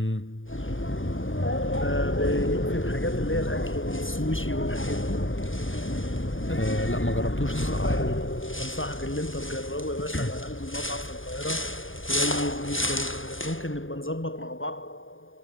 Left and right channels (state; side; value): late; right; 0.58 ms